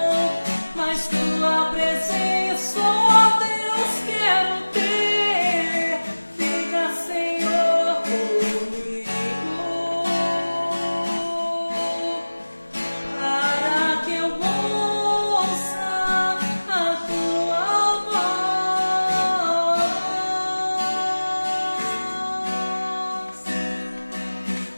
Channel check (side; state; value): both; inverted; correlation -1.00